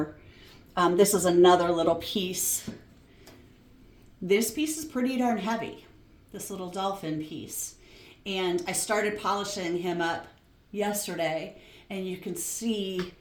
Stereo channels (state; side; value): identical; both; correlation 1.00